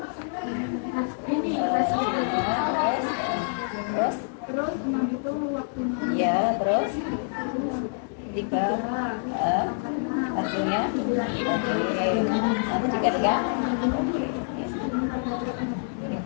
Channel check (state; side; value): silent; right; digital silence